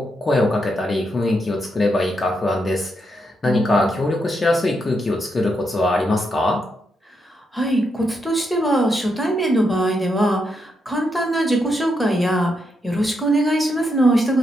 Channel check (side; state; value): both; normal; correlation 0.81